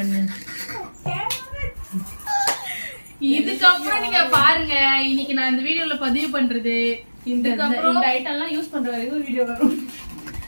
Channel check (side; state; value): both; inverted; correlation -1.00